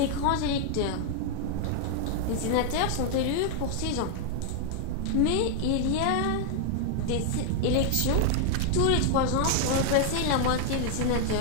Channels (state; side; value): different; both; correlation 0.00